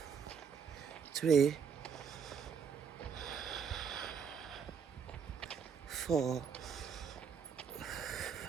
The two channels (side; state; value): left; quieter; 6.7 dB